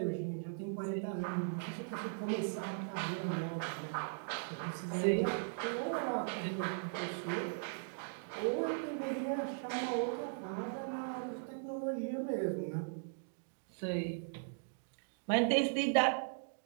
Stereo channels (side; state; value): left; silent; digital silence